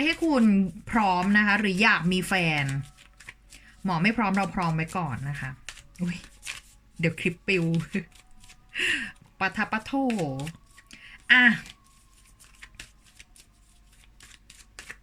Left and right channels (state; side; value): identical; both; correlation 1.00